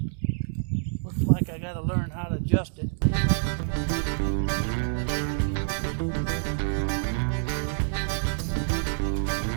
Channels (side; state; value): left; silent; digital silence